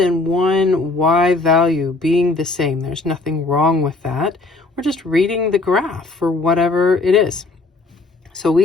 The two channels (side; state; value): right; quieter; 3.3 dB